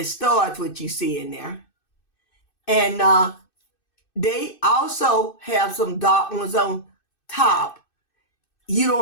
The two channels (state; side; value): late; right; 2.6 ms